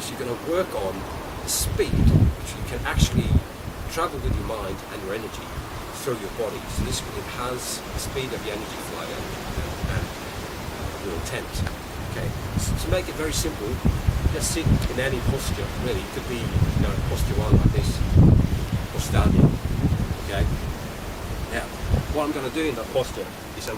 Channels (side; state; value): both; identical; correlation 1.00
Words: is you're going to work on the speed which you can actually travel with your mind and your energy through your body. So this will enhance the speed of your energy flow and your intent. Okay, so to make it very simple, just sit in any posture. Really, it could be posture one like this, or standing. Okay. Now, what I'm going to do in that posture is I'm